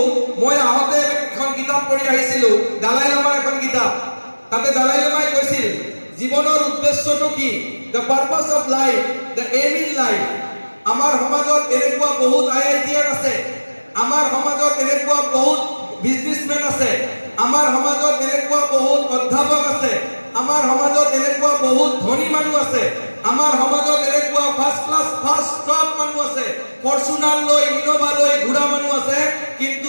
মই আহোঁতে এখন কিতাপ পঢ়ি আহিছিলোঁ, দালাই লামাৰ এখন কিতাপ। তাতে দালাই লামাই কৈছিল জীৱনৰ উদ্দেশ্যটো কি, the purpose of life, the aim in life. আমাৰ সমাজত এনেকুৱা বহুত আইআইটিয়ান আছে, আমাৰ সমাজত এনেকুৱা বহুত বিজনেছমেন আছে, আমাৰ সমাজত এনেকুৱা বহুত অধ্যাপক আছে, আমাৰ সমাজত এনেকুৱা বহুত ধনী মানুহ আছে, আমাৰ সমাজত এনেকুৱা ফাৰ্ষ্ট ক্লাছ ফাৰ্ষ্ট টপ মানুহ আছে, ফৰ্চুনাৰ লৈ ইনোভা লৈ ঘূৰা মানুহ আছে, কিন্তু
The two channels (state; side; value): inverted; both; correlation -1.00